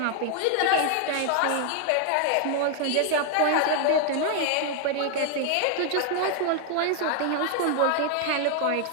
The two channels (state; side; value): different; both; correlation 0.00